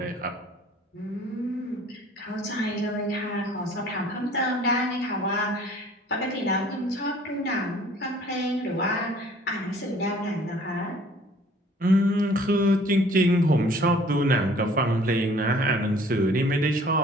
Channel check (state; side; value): normal; both; correlation 0.53